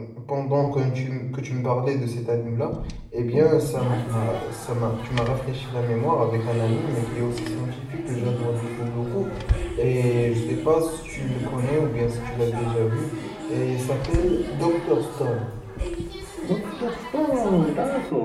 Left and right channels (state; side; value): identical; both; correlation 1.00